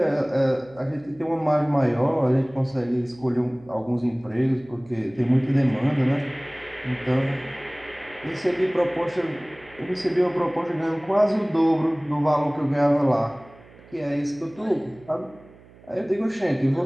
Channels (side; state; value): right; noise; hum, 24 dB below the sound